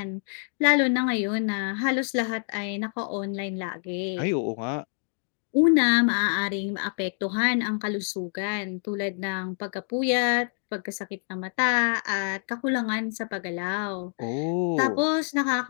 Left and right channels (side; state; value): right; silent; 60 dB below the other